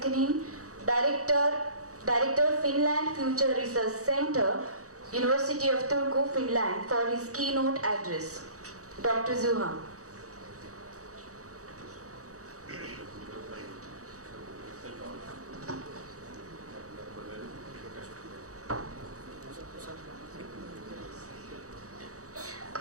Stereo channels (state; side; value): late; left; 0.66 ms